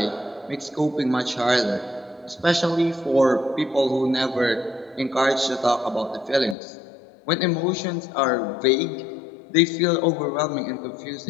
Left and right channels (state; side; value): drops out; right; at 6.6 s